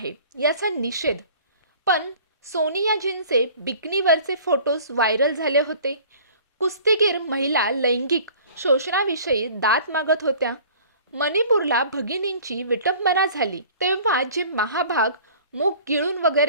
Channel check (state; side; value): inverted; both; correlation -0.48